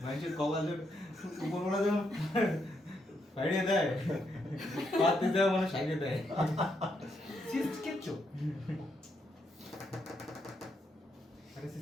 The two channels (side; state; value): both; normal; correlation 0.79